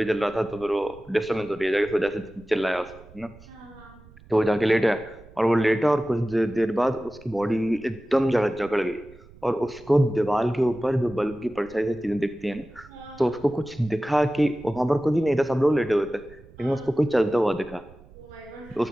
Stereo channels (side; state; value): right; noise; rumble, 23 dB below the sound